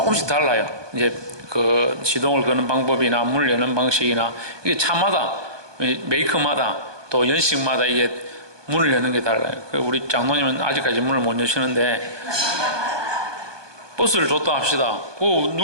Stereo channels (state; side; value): late; left; 1.2 ms